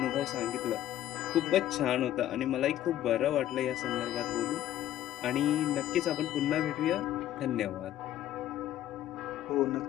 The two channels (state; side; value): quieter; right; 12.7 dB